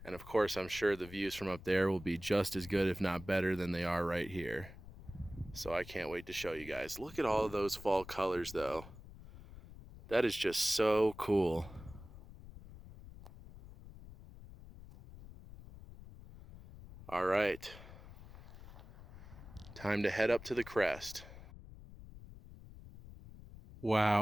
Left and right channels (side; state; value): left; noise; rumble, 16 dB below the sound